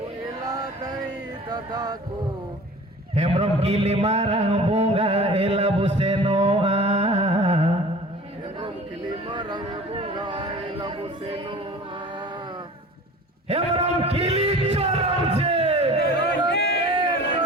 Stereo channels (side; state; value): both; normal; correlation 0.42